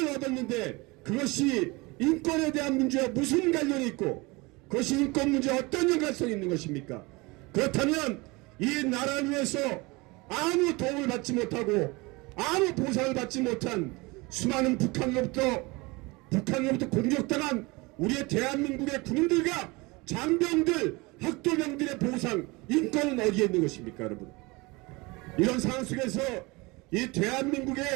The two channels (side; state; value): left; quieter; 24.5 dB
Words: 얻었는데 그것이 인권에 대한 문제와 무슨 관련이 있고 그것이 인권 문제와 어떤 연관성이 있는 것입니까? 그렇다면 이 나라를 위해서 아무 도움을 받지 못하고 아무 보상을 받지 못한 수많은 북한으로부터 공격당한 우리의 대한민국의 군인들과 장병들, 학도병들의 보상, 인권은 어디에 있는 것입니까, 여러분? 이런 상황 속에서 이